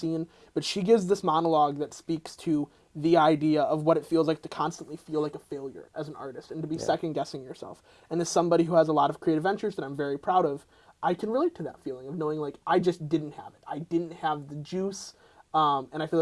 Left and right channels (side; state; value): both; identical; correlation 1.00